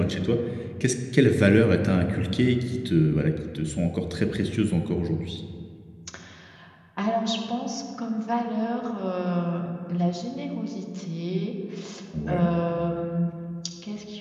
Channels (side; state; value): both; identical; correlation 1.00